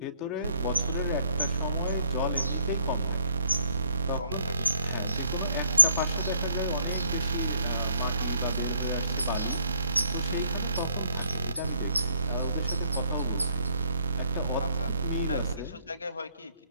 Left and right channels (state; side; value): inverted; both; correlation -0.67